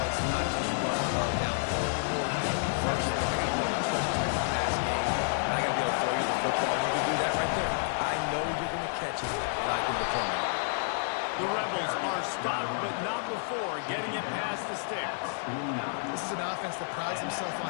it's not just run love down anymore. You got to be versatile. I got to be able to trust you in the pass game. And I got to be able to throw you the football. You can do that right there. I know you're going to catch it, and I can depend on it. The Rebels are stopped, but not before getting it past the sticks. This is an offense that prides himself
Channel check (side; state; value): right; silent; digital silence